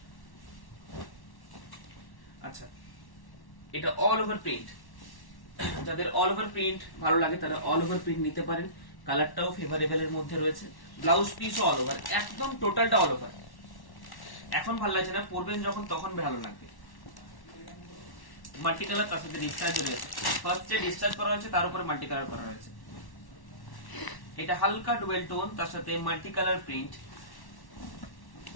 আচ্ছা এটা অল ওভার প্রিন্ট, যাদের অল ওভার প্রিন্ট ভালো লাগে তারা অল ওভার প্রিন্ট নিতে পারেন। কালারটাও ফেভারেবল এর মধ্যে রয়েছে, ব্লাউজ পিসও অল ওভার, একদম টোটালটা অল ওভার। এখন ভালো লাগছে না, পরবেন যখন তখন ভালো লাগবে। মাল্টি কালার তার সাথে ডিসচার্জ রয়েছে, ফার্স্টে ডিসচার্জ করা হয়েছে, তার উপরে মাল্টি কালার করা হয়েছে। এটা হালকা ডুয়েল টোন, তার সাথে মাল্টি কালার প্রিন্ট,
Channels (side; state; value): right; late; 1.1 ms